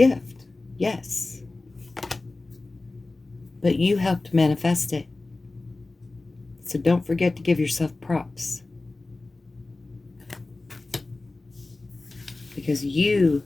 Yes. But you helped manifest it. So don't forget to give yourself props. Because you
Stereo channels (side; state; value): right; quieter; 3.2 dB